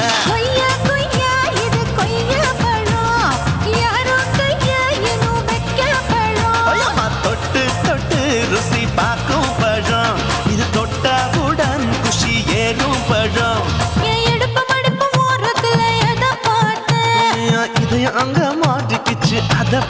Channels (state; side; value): identical; both; correlation 1.00